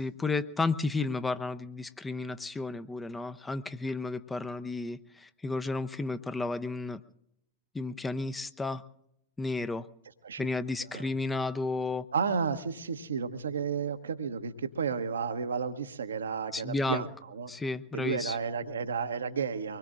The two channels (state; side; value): normal; both; correlation 0.23